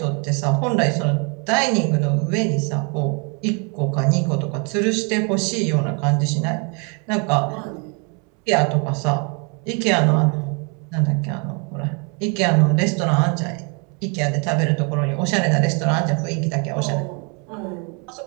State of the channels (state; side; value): quieter; left; 34.9 dB